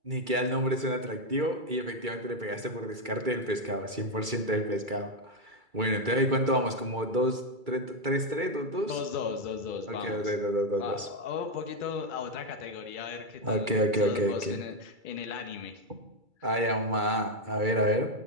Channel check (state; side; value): late; left; 2.3 ms